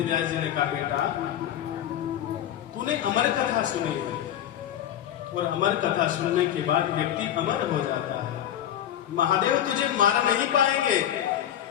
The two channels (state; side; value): quieter; right; 10.9 dB